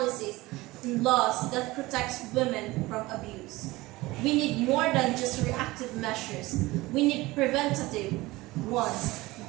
and laws that protect women from abuse. We need more than just reactive measures. We need preventative ones.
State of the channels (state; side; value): quieter; left; 20.1 dB